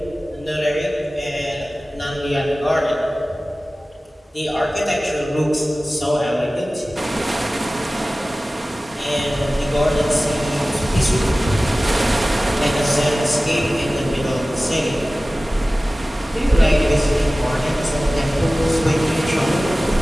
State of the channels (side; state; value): both; normal; correlation 0.97